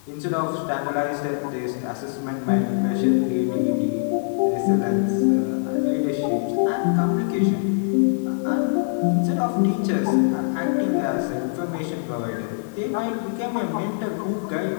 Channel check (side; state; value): right; silent; digital silence